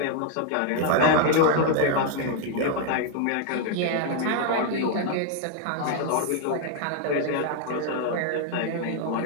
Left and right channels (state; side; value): different; both; correlation 0.00